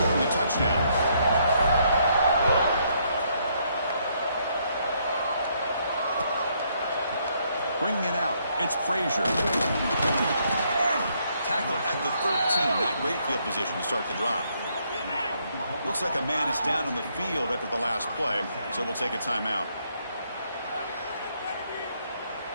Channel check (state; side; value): inverted; both; correlation -0.72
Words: Touchdown. Bringing it out, it's Frazier. Tackle at the 13. Not great field position to start the drive. Looks like a man is down on the field after the last play, so we'll take a timeout.